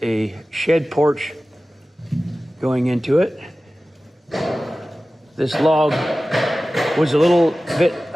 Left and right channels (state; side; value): normal; both; correlation 0.96